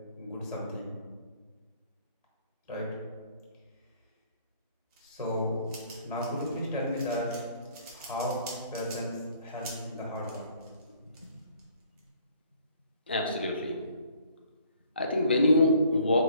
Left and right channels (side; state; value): both; inverted; correlation -0.59